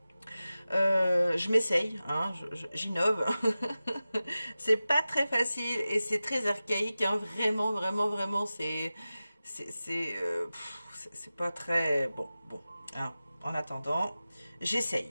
Je m'essaye, hein, j'innove. C'est pas très facile et c'est très archaïque, hein, vraiment, c'est pas très bon, hein, en attendant,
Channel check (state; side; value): inverted; both; correlation -0.95